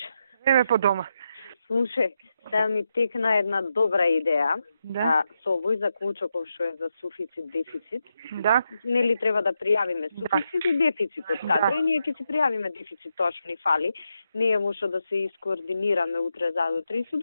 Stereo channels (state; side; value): inverted; both; correlation -0.85